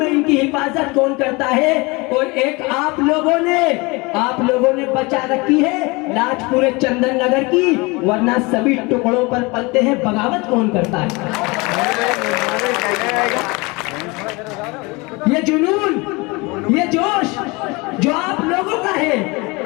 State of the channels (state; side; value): quieter; right; 25.7 dB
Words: है इनकी हिफाजत कौन करता है। और एक आप लोगों ने बचा रखी है लाज पूरे चंदन नगर की, वरना सभी टुकड़ों पर पलते हैं, बगावत कौन करता है। ये जुनून, ये जोश जो आप लोगों का है,